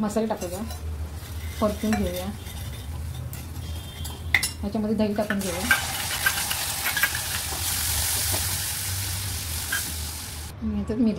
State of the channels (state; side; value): identical; both; correlation 1.00